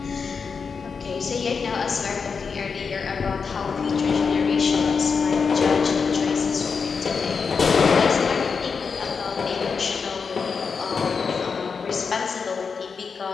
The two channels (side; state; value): right; quieter; 5.5 dB